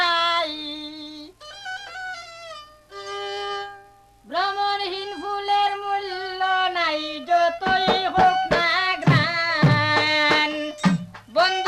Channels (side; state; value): both; identical; correlation 1.00